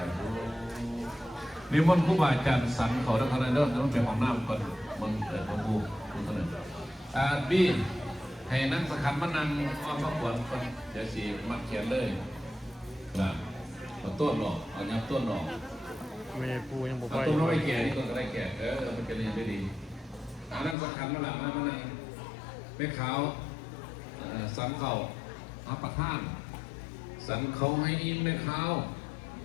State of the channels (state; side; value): drops out; right; at 20.8 s